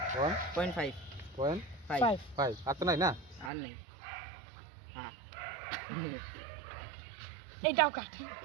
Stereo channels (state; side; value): drops out; left; at 3.5 s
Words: 1.5 1 5 5 আর তো নাই না আর নেই হ্যাঁ এটাও কাট